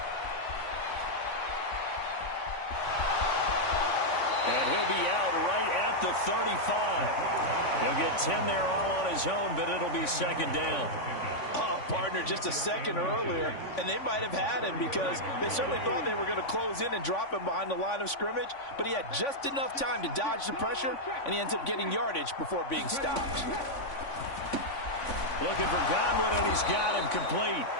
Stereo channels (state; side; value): late; right; 3.5 ms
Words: And he'll be out right at the 35. He'll get 10 there all on his own, but it'll be 2nd down. Oh, partner, just a second earlier, and they might have had him because they certainly thought they were going to close in and drop him behind the line of scrimmage, but he had just enough time to dodge the pressure, and he ends up getting yardage before being stopped. Looking for Godwin, and he's got him complete.